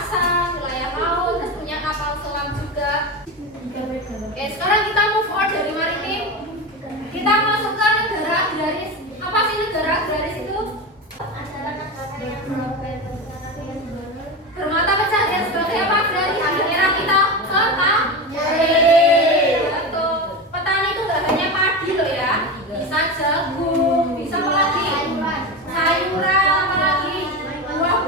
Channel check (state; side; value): normal; both; correlation 0.21